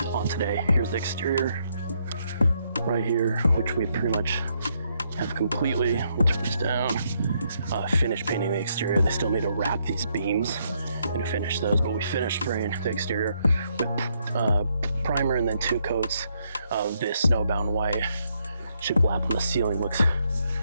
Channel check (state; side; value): inverted; both; correlation -0.75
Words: on today. Here's the exterior right here, which we pretty much have completely, we'll turn this down, finished painting the exterior. They still need to wrap these beams and finish those, but we finished spraying the exterior with primer and then 2 coats of this snowbound white. Shiplap on the ceiling looks